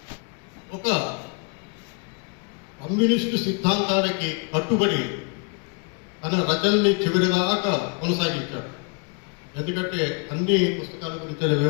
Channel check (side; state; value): right; quieter; 34.5 dB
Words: ఒక కమ్యూనిస్టు సిద్ధాంతాలకి కట్టుబడి తన రచనని చివరిదాకా కొనసాగించాడు. ఎందుకంటే అన్ని పుస్తకాల గురించి